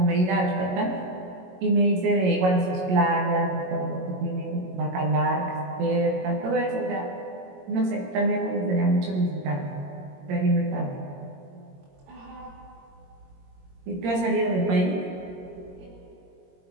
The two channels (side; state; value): left; late; 22 ms